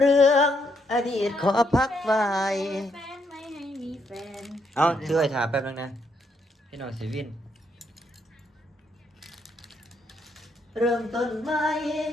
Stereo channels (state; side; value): normal; both; correlation 0.75